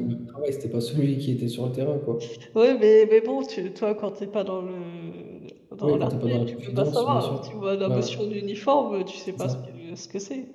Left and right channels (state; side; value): identical; both; correlation 1.00